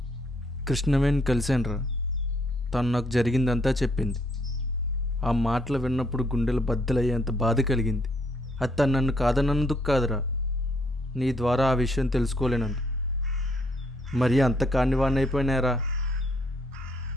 కృష్ణవేణి కలిసానురా. తను నాకు జరిగిందంతా చెప్పింది. ఆ మాటలు విన్నప్పుడు గుండెలు బద్దలయ్యేంత బాధ కలిగింది. అది తను నన్ను కాదన్నందుకు కాదురా, నీ ద్వారా ఆ విషయం తెలుసుకోలేనందు. మరి అంత కానివాణ్ణి అయిపోయినారా?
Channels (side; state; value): both; normal; correlation 0.69